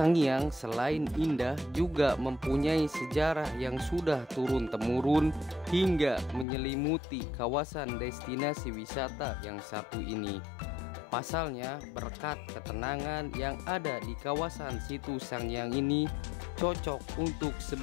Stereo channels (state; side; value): drops out; right; at 6.5 s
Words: selain indah juga mempunyai sejarah yang sudah turun-temurun hingga menyelimuti kawasan destinasi wisata yang satu ini. Pasalnya, berkat ketenangan yang ada di kawasan situs Sangiang ini cocok untuk